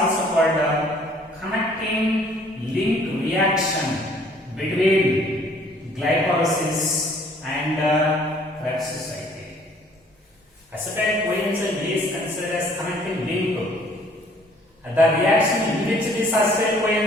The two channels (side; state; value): both; normal; correlation 0.58